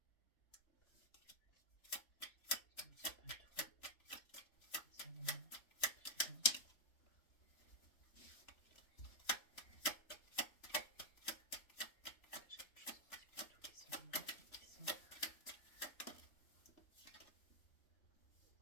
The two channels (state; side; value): late; right; 3.4 ms